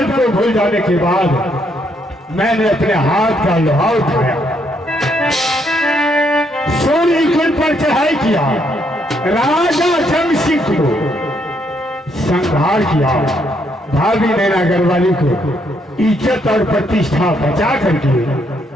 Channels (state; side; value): normal; both; correlation 0.73